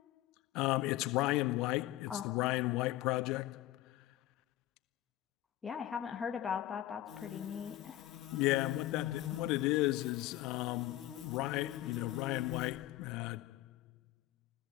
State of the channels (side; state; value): right; quieter; 15.1 dB